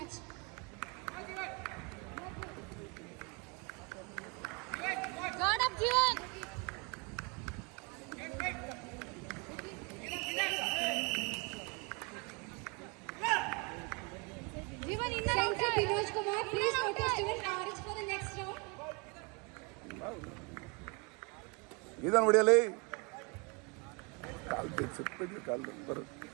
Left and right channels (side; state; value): left; quieter; 30.7 dB